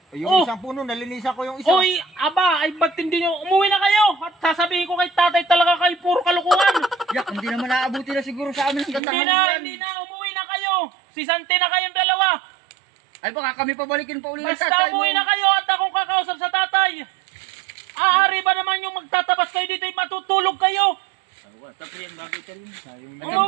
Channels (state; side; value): drops out; left; at 9.0 s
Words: ay, yung Oh. isang puno, nalinisan ko yung isa. Oy, aba, ay ba't hindi nyo, umuwi na kayo. At sasabihin ko kay tatay talaga kayo, puro kalukuhan. Yak, hindi naman naabuti na siguro sa amin ang Hindi gandahan na, yan. hindi na, umuwi na kayo. Sisante na kayong dalawa. Ay baka kami pabalikin pa uli ng Basta tatay mo. umuwi na kayo at akong kakausap sa tatay. Aari ba naman yung magtatabas kayo dito, matutulog kayo. Tapos yan, bagay ka rin.